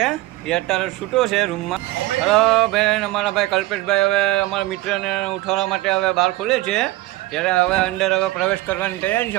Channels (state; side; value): quieter; left; 18.7 dB